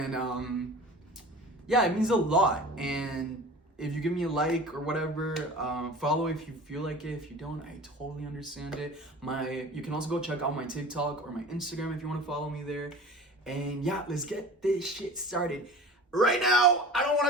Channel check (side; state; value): both; normal; correlation 0.38